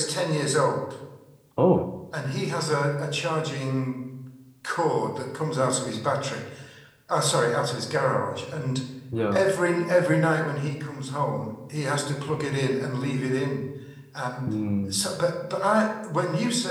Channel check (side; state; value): both; identical; correlation 1.00